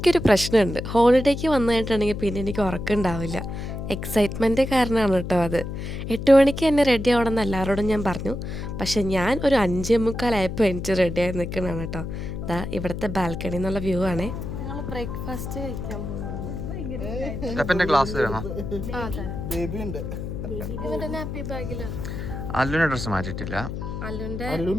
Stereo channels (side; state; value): left; noise; hum, 6 dB below the sound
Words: പ്രശ്നമുണ്ട്. ഹോളിഡേക്ക് വന്നു കഴിഞ്ഞിട്ടുണ്ടെങ്കിൽ പിന്നെ എനിക്ക് ഉറക്കമുണ്ടാവില്ല. എക്സൈറ്റ്മെൻറ്റ് കാരണമാണ് കേട്ടോ അത്. 8 മണിക്ക് തന്നെ റെഡി ആവണമെന്ന് എല്ലാവരോടും ഞാൻ പറഞ്ഞു. പക്ഷെ ഞാൻ ഒരു 5:45 എനിക്ക് റെഡിയായി നിൽക്കണതാണ് കേട്ടോ. ഇതാ ഇവിടുത്തെ ബാൽക്കണി എന്നുള്ള വ്യൂ ആണേ. ഞങ്ങൾ ബ്രേക്ക്ഫാസ്റ്റ് കഴിക്കാൻ പോകുന്നു. ക്ലാസ് അല്ലുവിന്റെ ഡ്രസ്സ് മാറ്റിയിട്ടില്ല. അല്ലുവിന്റെ